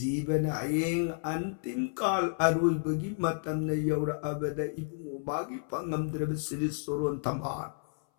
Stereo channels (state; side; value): silent; right; 56 dB below the other